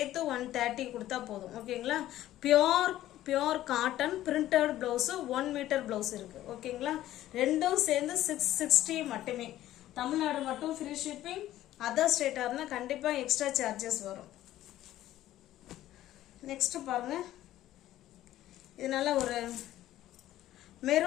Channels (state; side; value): quieter; right; 13.9 dB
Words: 130 கொடுத்தா போதும். ஓகேங்களா? Pure cotton printed blouse 1 metre blouse இருக்கு. ஓகேங்களா? ரெண்டும் சேர்ந்து 660 மட்டுமே. தமிழ்நாடு மட்டும் ஃப்ரீ ஷிப்பிங். அதர் ஸ்டேட்டாக இருந்தால் கண்டிப்பாக எக்ஸ்ட்ரா சார்ஜஸ் வரும். நெக்ஸ்ட் பாருங்க. இது நல்ல ஒரு